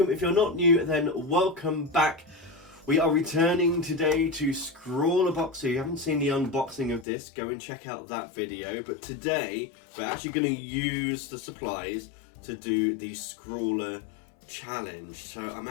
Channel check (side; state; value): right; drops out; at 7.1 s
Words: if you're not new then welcome back. We are returning today to ScrawlrBox. So if you haven't seen the unboxing of this, go and check out that video. But today we're actually going to use the supplies to do the ScrawlrChallenge. So I'm